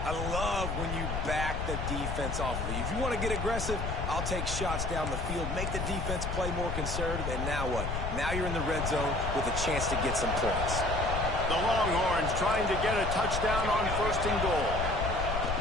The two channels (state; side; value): noise; left; rumble, 3 dB below the sound